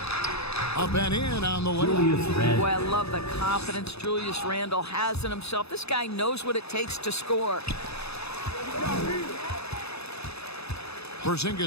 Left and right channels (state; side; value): late; right; 0.79 ms